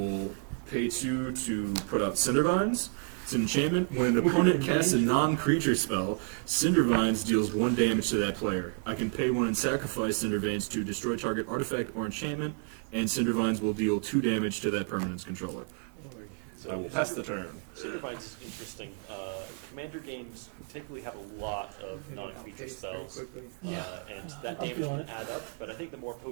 pay 2 to put out Cindervines. It's an enchantment. When an opponent casts a non-creature spell, Cindervines deals 1 damage to that player. I can pay 1 and sacrifice Cindervines to destroy target artifact or enchantment, and Cindervines will deal 2 damage to that permanent's controller. I will pass the turn. Cindervines is interesting. Commander games typically have a lot of non-creature spells, and that I'm damage feeling can add up. But I think the more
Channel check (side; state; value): left; quieter; 39.1 dB